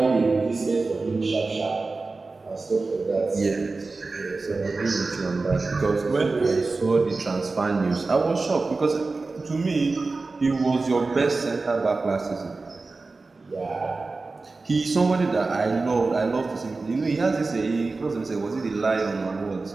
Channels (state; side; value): quieter; left; 3.7 dB